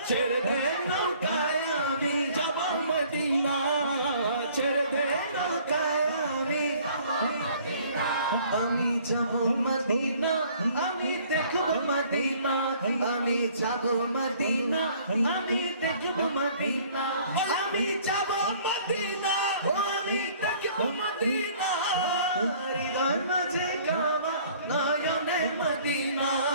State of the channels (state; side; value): inverted; both; correlation -0.55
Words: ছেড়ে দে নৌকায় আমি যাব মদিনা, ছেড়ে দে নৌকায় আমি যাব মদিনা। আমি দেখব মদিনা, আমি যাব মদিনা, আমি দেখব মদিনা। আমি যাব মদিনা, আমি দেখব মদিনা। হৃদয় মাঝে কাবা নয়নে মদিনা,